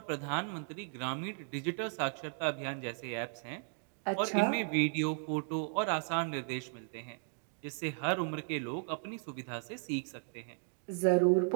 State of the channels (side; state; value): left; silent; 54 dB below the other